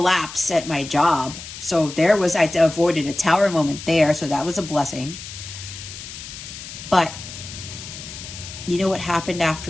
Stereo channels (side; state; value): left; noise; hiss, 12 dB below the sound